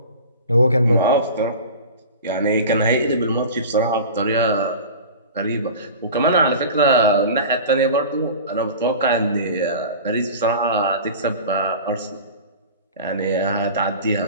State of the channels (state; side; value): inverted; both; correlation -0.36